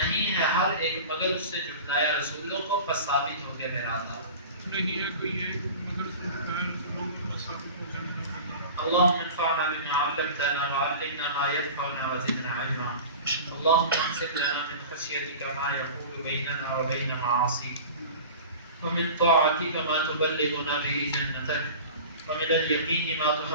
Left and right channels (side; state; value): both; inverted; correlation -0.36